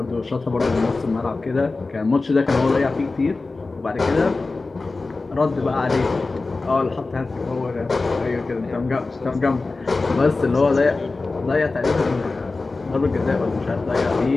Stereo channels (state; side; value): quieter; right; 3.6 dB